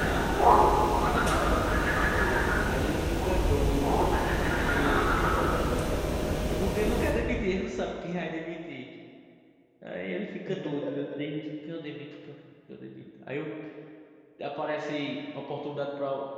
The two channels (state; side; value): identical; both; correlation 1.00